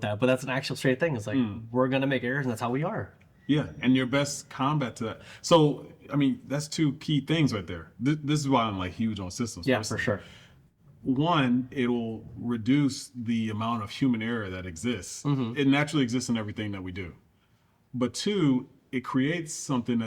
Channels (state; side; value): identical; both; correlation 1.00